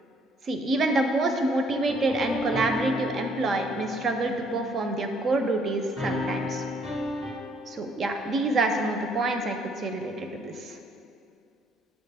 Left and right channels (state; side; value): normal; both; correlation 0.65